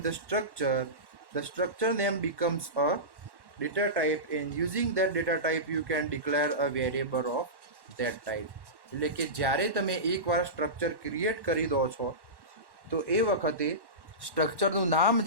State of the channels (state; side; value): late; left; 1.1 ms